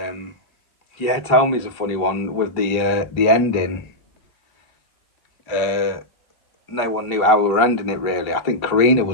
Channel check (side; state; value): right; late; 1.8 ms